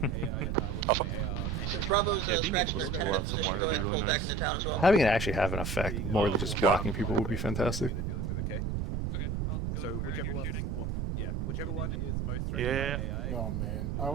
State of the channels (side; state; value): right; noise; rumble, 1 dB below the sound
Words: Since Bravo's Yeah, being able scratching to their pull out 10-minute some position, wire go would be ahead and really pull back nice. into town as well. Having it actually have an effect more than just blocking people would be fantastic. Okay, I'll go So where whichever you're one, shooting. yeah, whichever one is most threatened Yeah. by AI. Oh man, you're I